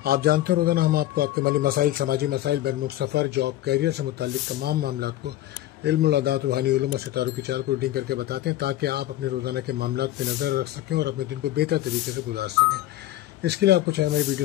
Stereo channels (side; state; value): right; quieter; 14.5 dB